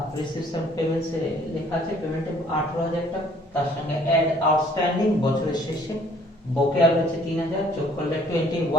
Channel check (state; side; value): normal; both; correlation 0.59